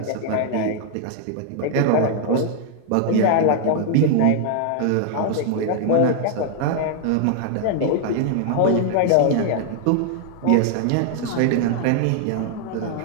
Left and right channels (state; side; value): different; both; correlation 0.00